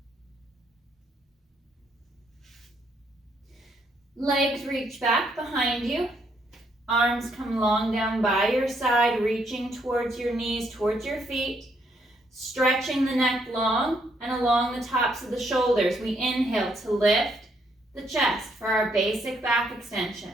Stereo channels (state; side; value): normal; both; correlation 0.72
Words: Legs reach back behind you. Arms come long down by your side, reaching towards your knees, towards your feet. Stretching the neck long and along the tops of the shoulders. We inhale to lift the chest for our basic back